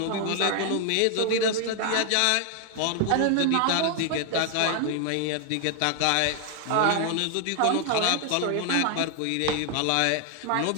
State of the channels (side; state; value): both; different; correlation 0.00